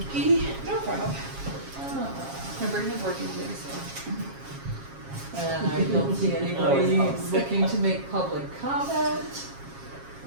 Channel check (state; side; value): late; left; 7.4 ms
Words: Kiki? No problem. My brain is working today, so. And I don't see anybody looking to make public comment.